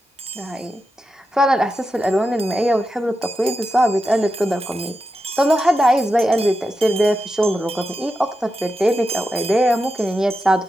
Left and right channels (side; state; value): both; normal; correlation 0.89